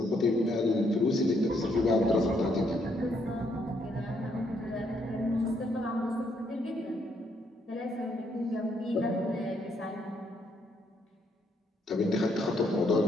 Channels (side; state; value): both; normal; correlation 0.73